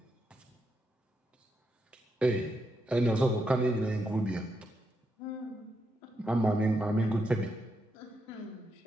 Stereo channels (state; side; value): normal; both; correlation 0.82